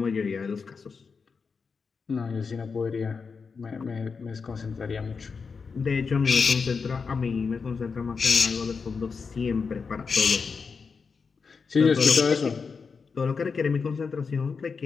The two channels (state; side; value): quieter; right; 5.3 dB